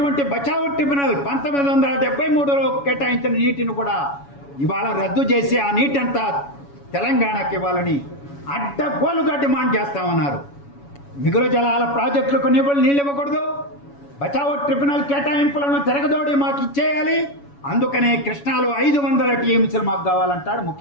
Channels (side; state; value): right; late; 7.1 ms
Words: బచావ్ ట్రిబ్యునల్ 1973లో కేటాయించిన నీటిని కూడా ఇవాళ రద్దు చేసి ఆ నీటి అంతా తెలంగాణకి ఇవ్వాలని అడ్డగోలుగా డిమాండ్ చేస్తామన్నారు. మిగులు జలాల ప్రాజెక్టులకు నీళ్ళు ఇవ్వకూడదు, బచావ్ ట్రిబ్యునల్ కేటాయింపులను తిరగదోడి మాకు ఇచ్చేయాలి, అందుకనే కృష్ణాలో 500 టీఎంసీలు మాకు కావాలంటాడు